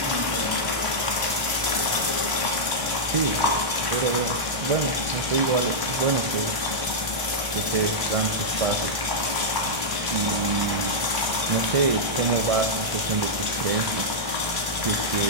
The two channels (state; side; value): late; left; 1.0 ms